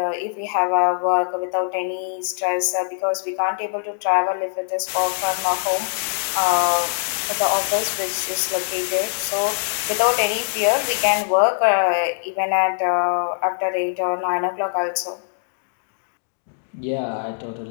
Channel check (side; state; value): right; silent; digital silence